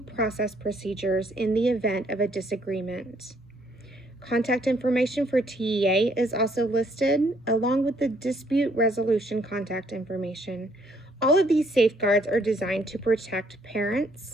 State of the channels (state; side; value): normal; both; correlation 0.67